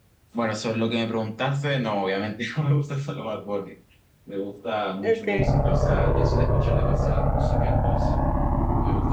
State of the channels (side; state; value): both; identical; correlation 1.00